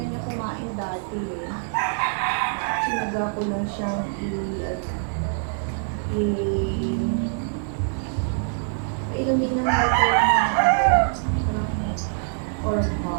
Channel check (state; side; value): silent; left; digital silence